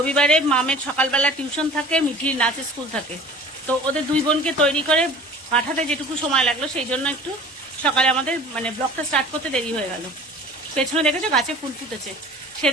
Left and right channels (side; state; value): both; normal; correlation 0.44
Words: মামের সকালবেলা টিউশন থাকে, মিঠির নাচের স্কুল থাকে, তো ওদের দুই বোনকে তৈরি করে পাঠাতে যেটুকু সময় লাগলো সেই জন্য একটু সকালে আমাদের ব্লগটা স্টার্ট করতে দেরি হয়ে গেল। পেছনে দেখেছো গাছে ফুল ফুটেছে,